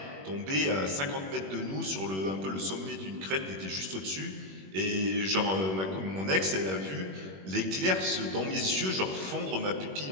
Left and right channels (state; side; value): late; left; 21 ms